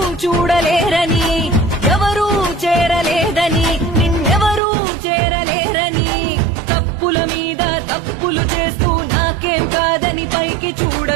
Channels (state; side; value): drops out; left; at 4.6 s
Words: చూడలేరని, ఎవరూ చేరలేదని నిన్నెవరూ చేరలేరని, తప్పుల మీద తప్పులు చేస్తూ నాకేం కాదని పైకి